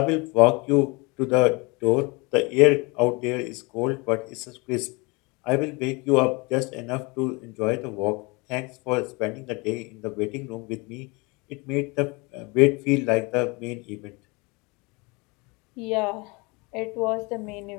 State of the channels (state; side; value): quieter; right; 27.3 dB